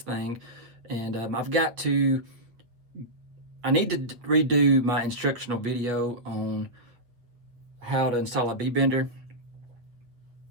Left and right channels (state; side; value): late; left; 8.2 ms